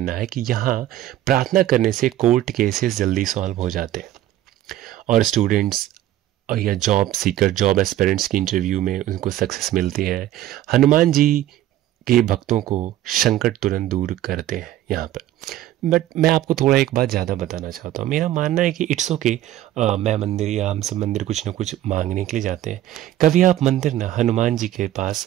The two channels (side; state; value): left; quieter; 13.4 dB